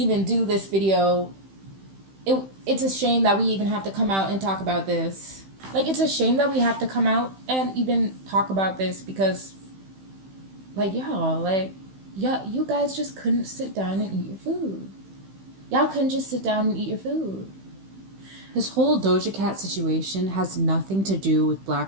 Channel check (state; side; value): late; left; 15 ms